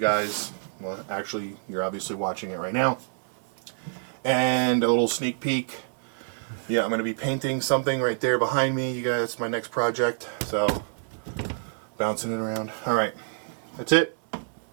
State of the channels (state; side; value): silent; left; 60 dB below the other